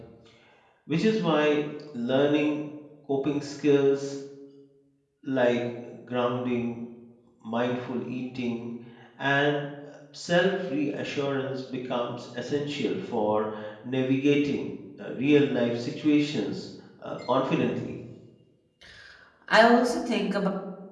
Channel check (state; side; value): identical; both; correlation 1.00